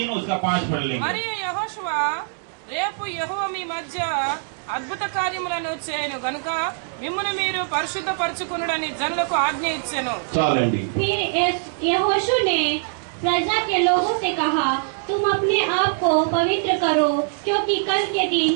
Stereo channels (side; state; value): left; silent; digital silence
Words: उसका 5 पढ़ लेंगे। మరియు యెహోషువ రేపు యెహోవా మీ మధ్య అద్భుత కార్యములను చేయను గనుక మిమ్మును మీరు పరిశుద్ధపరచుకొనుడని జనులకు ఆజ్ఞ ఇచ్చెను। చాలండి. फिर यहोशू ने प्रजा के लोगों से कहा, तुम अपने आप को पवित्र करो, क्योंकि कल के दिन